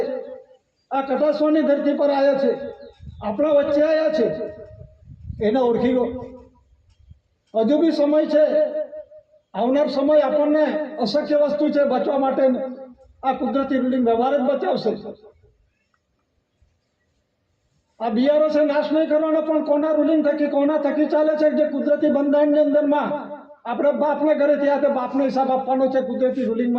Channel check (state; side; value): identical; both; correlation 1.00